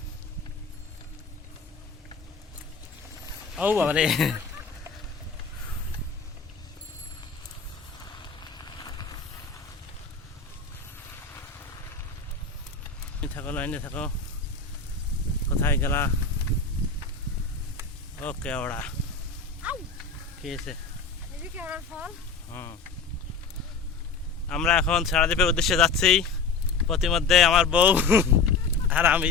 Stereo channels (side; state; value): right; quieter; 4.9 dB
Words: ও বাবা রে, থাকো লাইনে থাকো। কোথায় গেলা? ওকে ওরা কি আছে? আমরা এখন সারাদ্বীপের উদ্দেশ্যে যাচ্ছি। প্রতিমধ্যে আমার বউ আর আমি